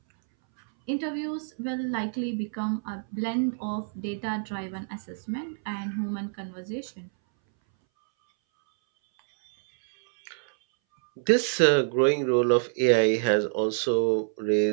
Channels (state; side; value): silent; left; 60 dB below the other